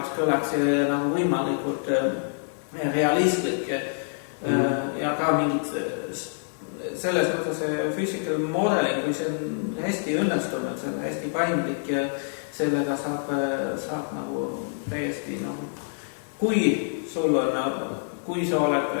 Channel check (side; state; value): right; silent; digital silence